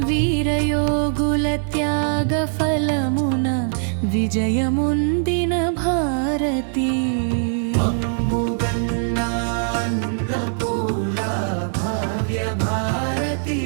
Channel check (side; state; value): left; silent; 65 dB below the other